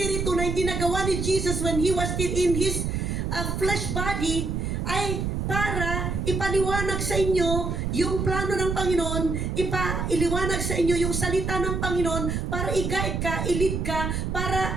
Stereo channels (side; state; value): right; noise; rumble, 1 dB below the sound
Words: na hindi nagawa ni Jesus when He was still in His flesh body ay para ipaliwanag sa inyo yung plano ng Panginoon, iliwanag sa inyo yung salita ng Panginoon para i-guide ka, i-lead ka,